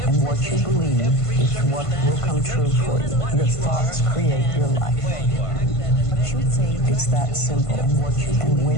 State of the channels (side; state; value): right; late; 1.5 ms